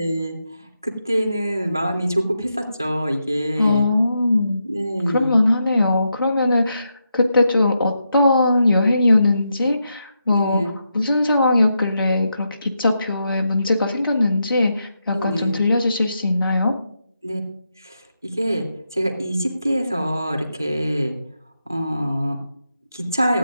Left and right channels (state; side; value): inverted; both; correlation -0.84